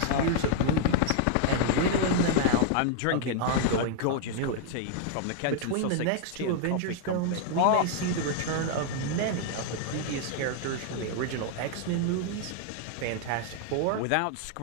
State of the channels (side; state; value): both; different; correlation 0.00